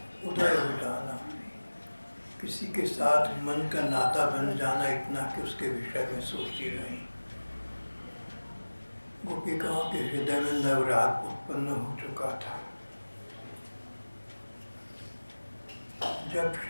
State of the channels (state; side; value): inverted; both; correlation -1.00